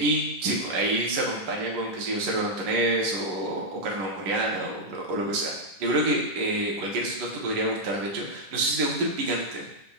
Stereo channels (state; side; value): late; left; 11 ms